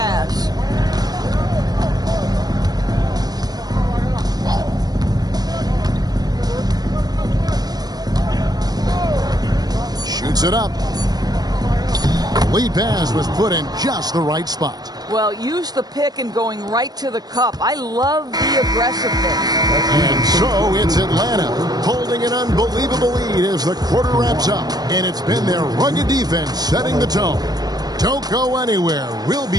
Shoots it up. Lead pass was put in just the right spot. Well, use the pick and going right to the cup. I love the aggressiveness. And so it's Atlanta holding an unbelievable lead as the quarter wraps up. And it's been their rugged defense setting the tone. Don't go anywhere. We'll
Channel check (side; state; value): left; late; 0.19 ms